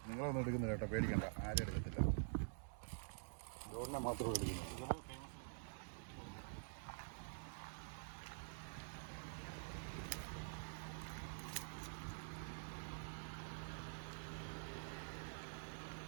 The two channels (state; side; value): silent; left; digital silence